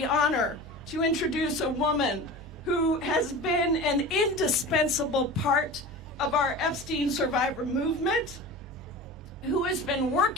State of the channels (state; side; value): normal; both; correlation 0.33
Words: honor to introduce a woman who has been an indispensable part of our Epstein survivor movement, who has been